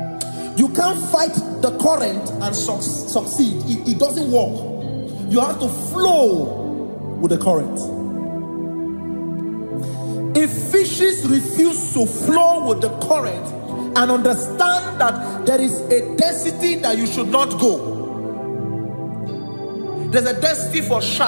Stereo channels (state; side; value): inverted; both; correlation -1.00